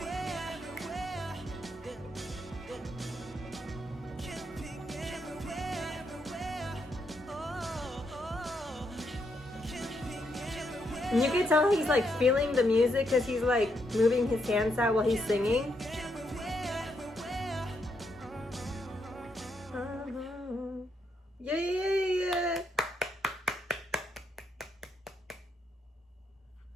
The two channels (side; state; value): both; normal; correlation 0.78